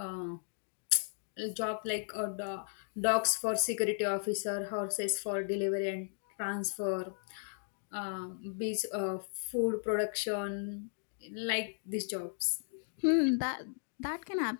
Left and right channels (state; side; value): silent; right; digital silence